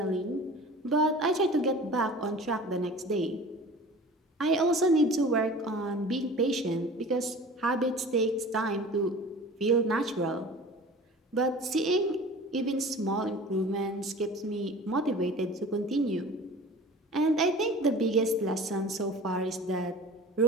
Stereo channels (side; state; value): both; normal; correlation 0.41